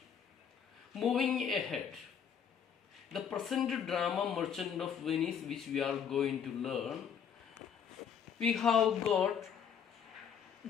Moving ahead, the present drama Merchant of Venice, which we are going to learn, we have got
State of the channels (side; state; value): right; quieter; 7.7 dB